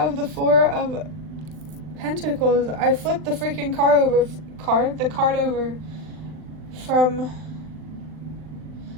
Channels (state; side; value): late; left; 39 ms